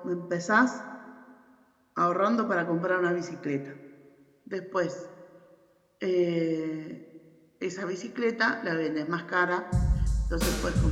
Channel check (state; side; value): identical; both; correlation 1.00